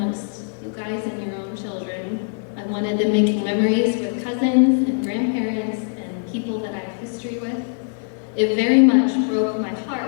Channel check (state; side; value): silent; right; digital silence